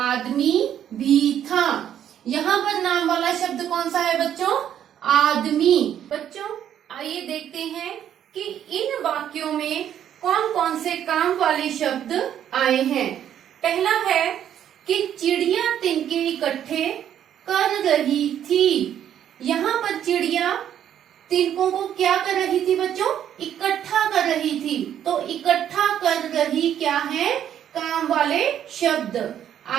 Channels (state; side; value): quieter; left; 10.1 dB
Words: भी था। यहाँ पर नाम वाला शब्द कौन सा है बच्चों? आदमी। बच्चों आइए देखते हैं कि इन वाक्यों में कौन कौन से काम वाले शब्द आए हैं। पहला है कि चिड़िया तिनके इकट्ठे कर रही थी। यहाँ पर चिड़िया तिनकों को क्या कर रही थी बच्चों? इकट्ठा कर रही थी। तो इकट्ठा कर रही क्या है? काम वाले शब्द।